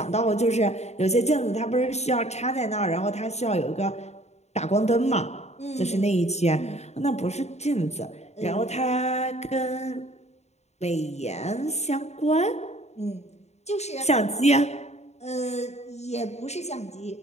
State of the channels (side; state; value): right; late; 0.32 ms